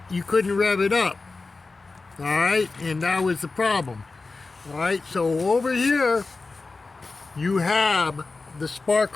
you couldn't rev it up. Alright, and that was the problem. Alright, so over here you have the spark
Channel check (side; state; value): right; quieter; 3.8 dB